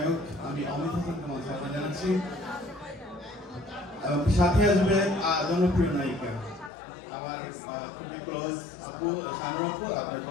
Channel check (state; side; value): drops out; right; at 6.7 s